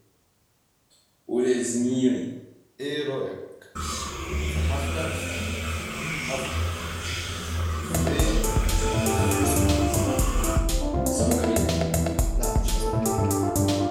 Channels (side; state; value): both; identical; correlation 1.00